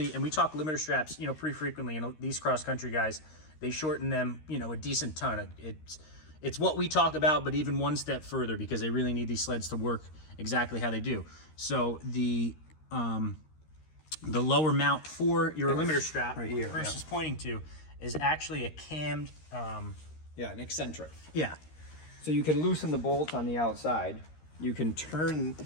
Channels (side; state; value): right; late; 13 ms